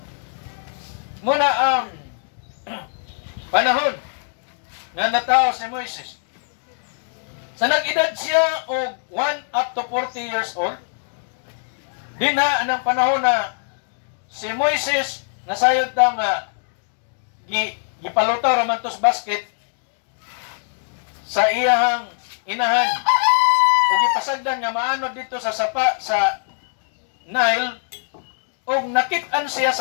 Muna ang panahon nga natao si Moises. Sa nag-edad siya og 1 up to 40 years old, dinha anang panahon na si Moises nasayod ta nga gipalutaw raman tos basket sa iyang inahan ug gipasagdan nga maanod dito sa sapa sa Nile ug nakit-an siya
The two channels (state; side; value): silent; right; digital silence